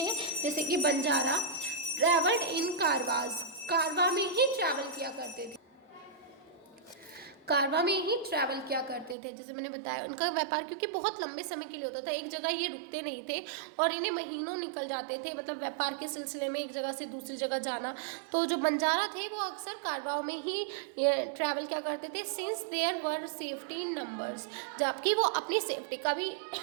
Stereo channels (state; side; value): drops out; left; at 9.2 s